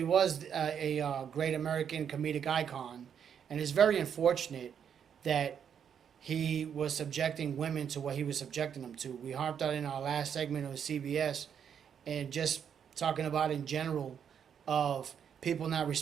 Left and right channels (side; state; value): left; quieter; 8.0 dB